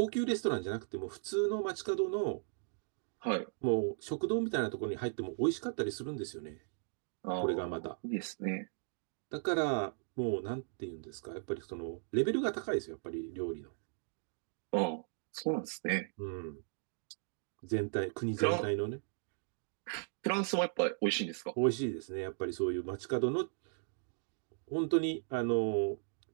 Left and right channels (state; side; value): silent; left; digital silence